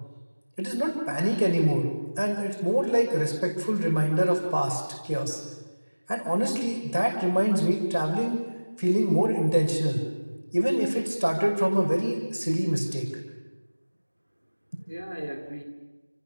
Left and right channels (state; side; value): inverted; both; correlation -1.00